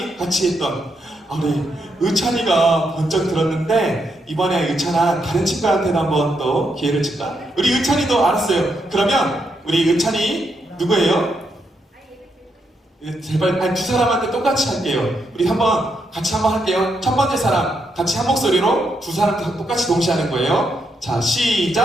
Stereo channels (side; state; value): both; normal; correlation 0.80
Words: 같이 했던 우리 의찬이가 번쩍 들었는데 이번에 의찬아 다른 친구한테도 한번 또 기회를 줄까? 우리 의찬이도 알았어요. 그러면 우리 의찬이 누구예요? 제발 두 사람한테 똑같이 할게요. 우리 같이 한번 할게요. 첫 번째 사람 같이 한 목소리로 두 사람 똑같이 동시에 하는 거예요. 자,